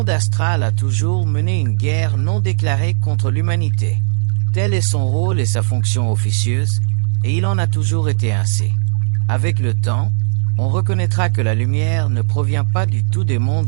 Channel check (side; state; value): left; silent; 69 dB below the other